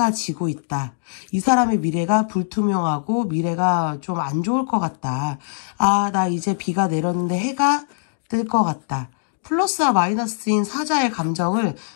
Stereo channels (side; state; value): right; silent; digital silence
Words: 지고 있다. 이 사람의 미래가 불투명하고 미래가 좀 안 좋을 것 같다. 아, 나 이제 비가 내렸는데 해가 뜰 것 같다. 플러스와 마이너스인 사자의 감정을